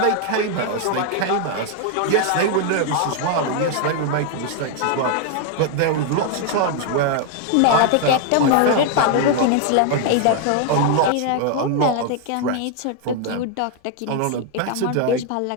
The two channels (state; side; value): different; both; correlation 0.00